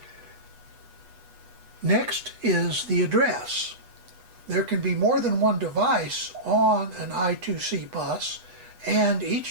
Next is the address. There can be more than one device on an I2C bus, and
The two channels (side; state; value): left; late; 8.2 ms